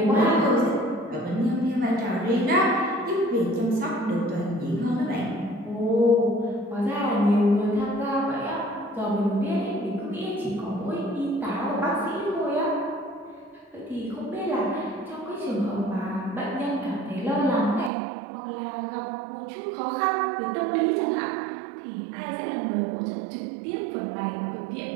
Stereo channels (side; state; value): left; drops out; at 17.9 s